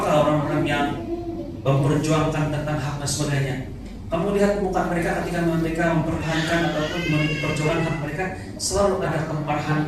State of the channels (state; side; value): identical; both; correlation 1.00